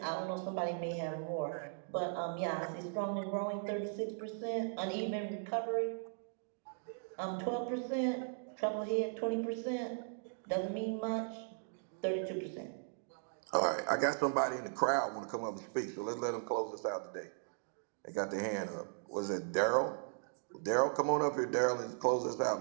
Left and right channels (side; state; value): left; silent; digital silence